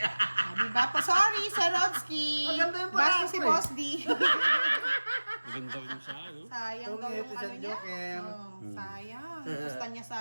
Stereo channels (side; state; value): both; inverted; correlation -1.00